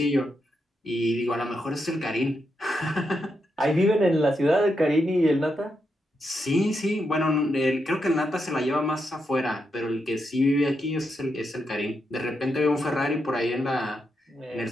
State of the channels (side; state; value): both; normal; correlation 0.83